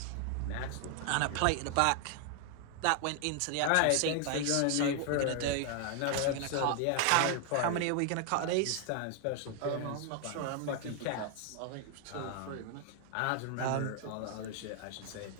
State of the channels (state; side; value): different; both; correlation 0.00